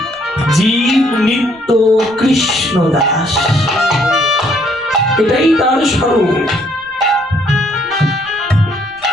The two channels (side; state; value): left; noise; rumble, 29 dB below the sound